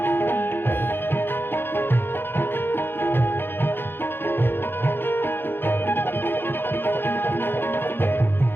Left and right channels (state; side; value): late; right; 0.10 ms